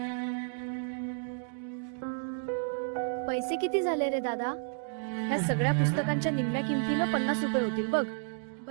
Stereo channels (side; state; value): left; silent; 57 dB below the other